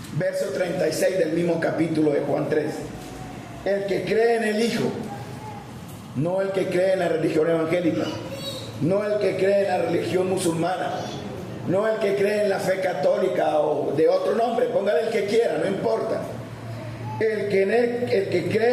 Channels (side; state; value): both; identical; correlation 1.00